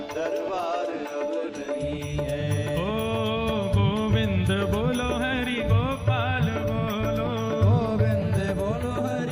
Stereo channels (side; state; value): both; identical; correlation 1.00